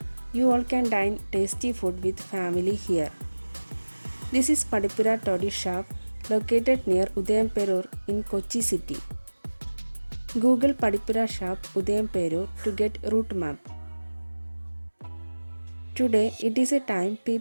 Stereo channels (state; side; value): inverted; both; correlation -1.00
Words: You all can dine tasty food with family here. This is Padipura Toddy Shop located near Udayamperur in Kochi city. Google Padipura Shop Udayamperur to get route map. Today it is a time